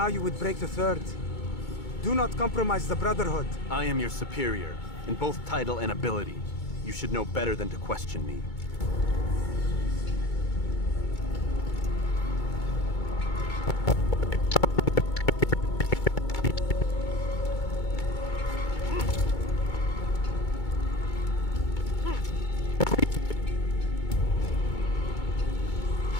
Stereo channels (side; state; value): right; late; 2.2 ms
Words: you would break the 3rd. Do not compromise the Brotherhood. I am your superior, in both title and ability. You should know better than to question me.